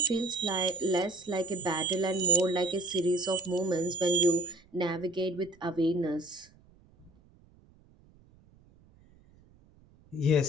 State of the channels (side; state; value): right; noise; rumble, 29 dB below the sound